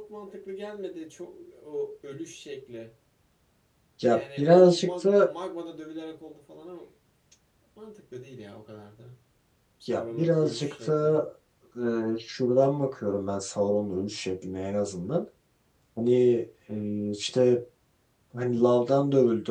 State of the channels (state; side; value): identical; both; correlation 1.00